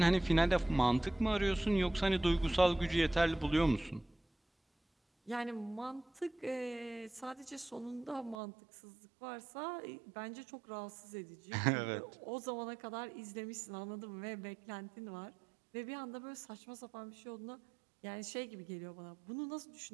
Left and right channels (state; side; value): drops out; left; at 8.3 s